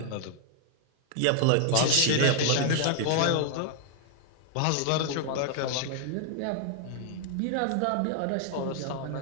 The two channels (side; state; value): both; different; correlation 0.00